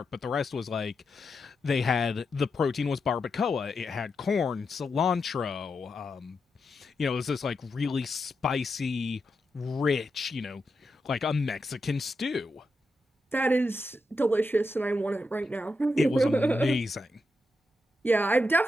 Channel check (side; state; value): both; normal; correlation 0.86